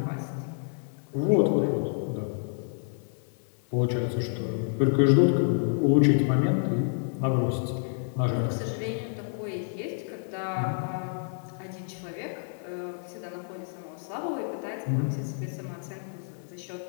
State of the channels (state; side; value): silent; right; 59 dB below the other